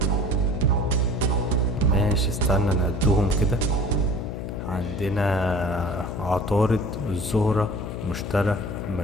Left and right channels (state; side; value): noise; left; hum, 6 dB below the sound